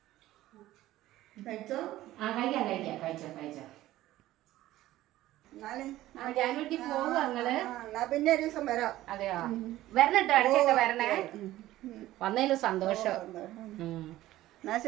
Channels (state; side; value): quieter; left; 15.4 dB